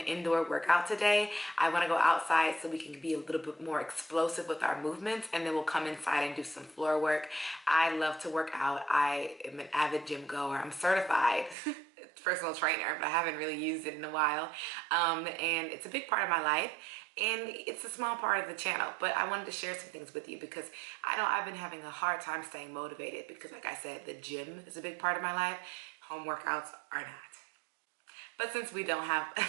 indoor workout today. I want to go outside so we can be a little bit more explosive with our movements, and then we'll come inside and do some floor work. I love to work out. I am an avid gym goer. I'm certified personal trainer, but I haven't really used it in a while. And it's a big part of my life. And it's a small part of the channel, but I wanted to share some things with you because I know I've been having a hard time staying motivated because, like I said, the gym is a big part of my life. Home workouts are not. But since we don't have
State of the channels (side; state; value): left; drops out; at 11.6 s